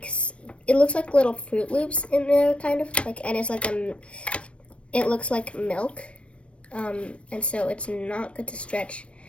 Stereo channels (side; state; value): right; late; 0.061 ms